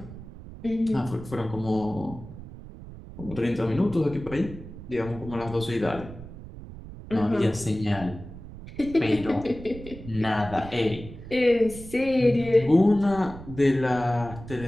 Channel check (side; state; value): right; noise; rumble, 14 dB below the sound